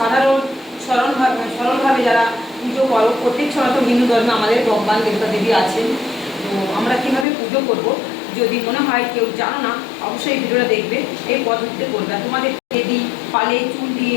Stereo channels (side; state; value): right; drops out; at 7.2 s